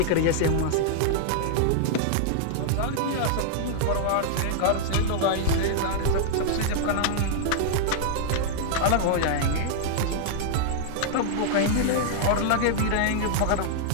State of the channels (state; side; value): different; both; correlation -0.01